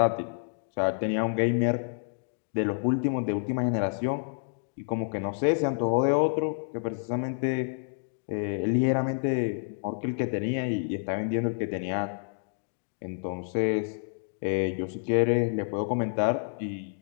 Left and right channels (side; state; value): right; silent; digital silence